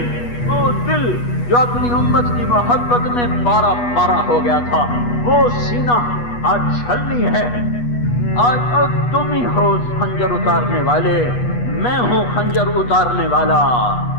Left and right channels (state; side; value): late; right; 8.3 ms